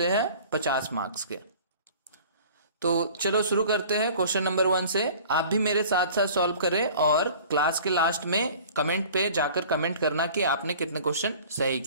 हैं 50 मार्क्स के। तो चलो शुरू करते हैं क्वेश्चन नंबर 1 से। आप भी मेरे साथ साथ सॉल्व करें और क्लास के लास्ट में कमेंट पे जाकर कमेंट करना कि आपने कितने क्वेश्चन सही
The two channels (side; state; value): both; inverted; correlation -0.46